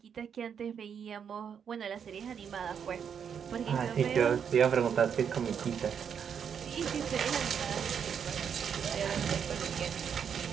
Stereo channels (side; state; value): left; quieter; 7.6 dB